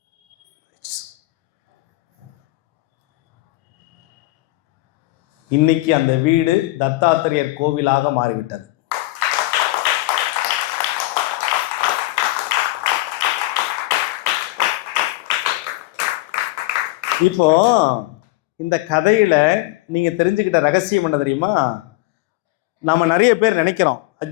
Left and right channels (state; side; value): quieter; right; 19.4 dB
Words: இன்னைக்கு அந்த வீடு தத்தாத்திரேயர் கோவிலாக மாறிவிட்டது. இப்போ இந்த கதையில நீங்க தெரிஞ்சுக்கிட்ட ரகசியம் என்ன தெரியுமா? நாம நிறைய பேர் நினைக்கிறோம்,